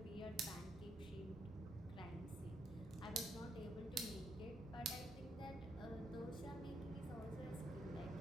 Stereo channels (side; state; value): both; normal; correlation 0.76